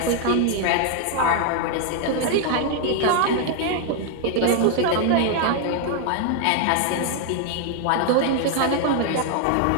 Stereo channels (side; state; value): both; different; correlation 0.00